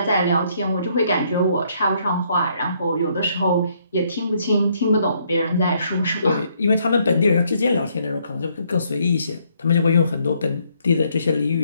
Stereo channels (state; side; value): inverted; both; correlation -0.70